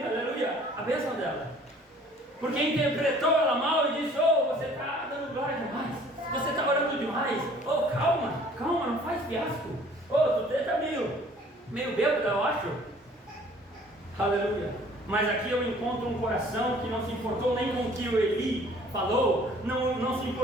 aleluia, a bênção dela. Porque interpretou ela mal e disse, você está dando glória demais, você está orando demais, calma, não faz fiasco, tu está meio bêbado, eu acho. Aleluia. Mas aqui eu encontro um coração que não se importou nem com o que o Eli falou, não se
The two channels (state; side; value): normal; both; correlation 0.54